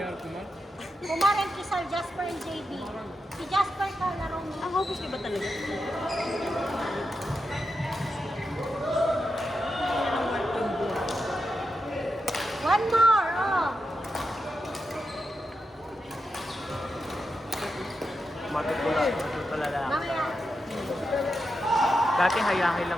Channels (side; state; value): both; normal; correlation 0.87